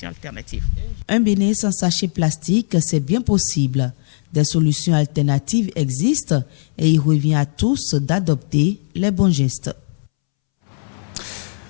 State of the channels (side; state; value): right; silent; 66 dB below the other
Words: alternatives. Un Bénin sans sachet plastique, c'est bien possible. Des solutions alternatives existent et il revient à tous d'adopter les bons gestes.